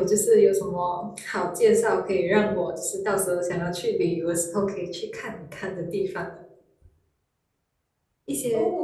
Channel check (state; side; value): identical; both; correlation 1.00